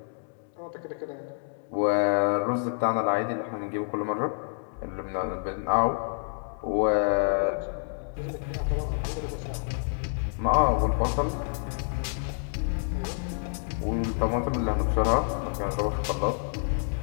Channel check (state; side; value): silent; right; digital silence